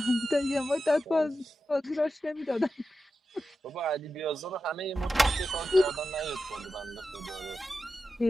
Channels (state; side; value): normal; both; correlation 0.91